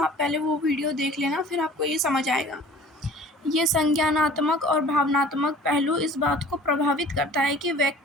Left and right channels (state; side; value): normal; both; correlation 0.47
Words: पहले वो वीडियो देख लेना, फिर आपको ये समझ आएगा। ये संज्ञानात्मक और भावनात्मक पहलू इस बात को प्रभावित करता है कि